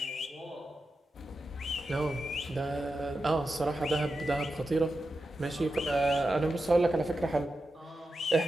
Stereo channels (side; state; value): both; normal; correlation 0.90